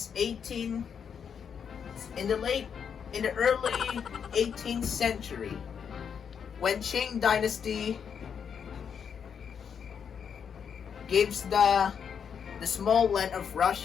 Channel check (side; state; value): right; quieter; 7.2 dB